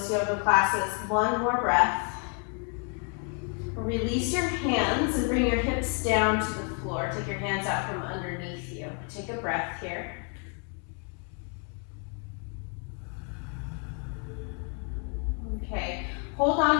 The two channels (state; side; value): quieter; right; 38.9 dB